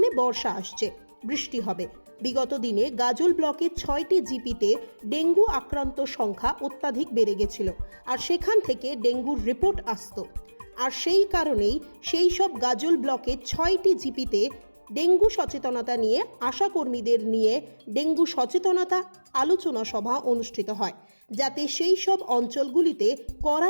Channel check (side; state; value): both; inverted; correlation -1.00